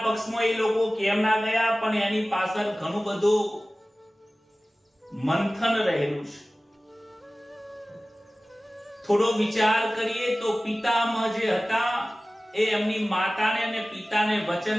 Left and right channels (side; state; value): both; normal; correlation 0.97